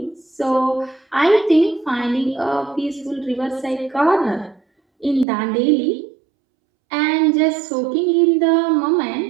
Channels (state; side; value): drops out; left; at 5.2 s